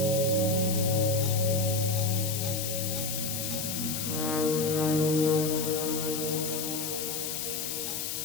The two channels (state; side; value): noise; left; hiss, 3 dB below the sound